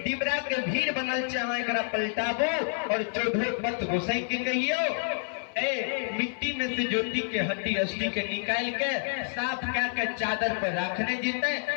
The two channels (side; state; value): right; silent; 59 dB below the other